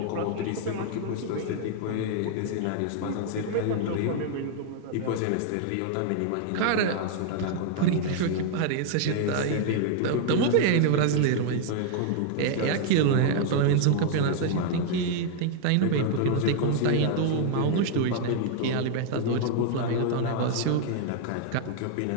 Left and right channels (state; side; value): different; both; correlation 0.00